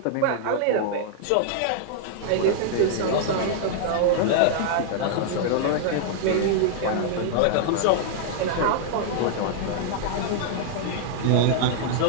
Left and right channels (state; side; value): different; both; correlation -0.01